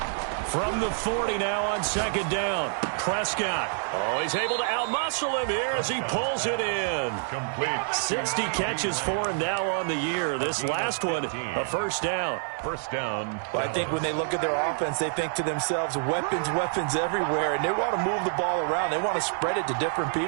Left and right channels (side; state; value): left; silent; 60 dB below the other